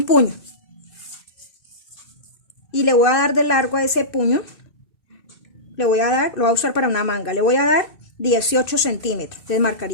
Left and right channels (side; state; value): right; late; 2.6 ms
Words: puño. Y le voy a dar de largo a ese puño. Lo voy a usar para una manga. Le voy a dar 18 centímetros. Entonces